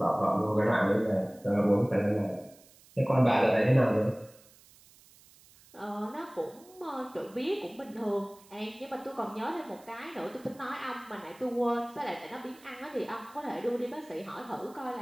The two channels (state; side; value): noise; right; hiss, 26 dB below the sound